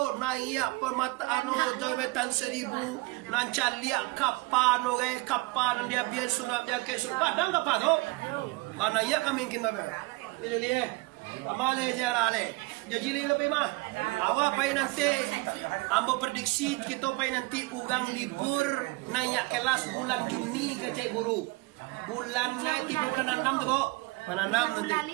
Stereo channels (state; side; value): quieter; left; 24.7 dB